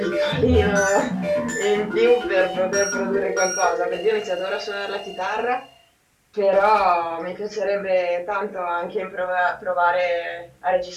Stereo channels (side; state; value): both; identical; correlation 1.00